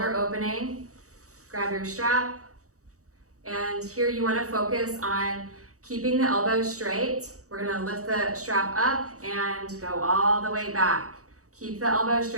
opening. Grab your strap. And here you want to focus on keeping the elbows straight. We're going to lift the strap up and go all the way back. Keep the elbows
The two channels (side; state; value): left; late; 0.65 ms